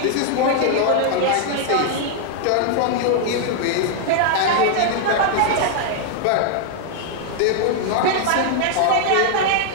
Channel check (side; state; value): both; different; correlation 0.00